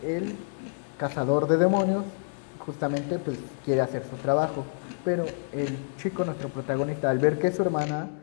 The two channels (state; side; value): silent; right; digital silence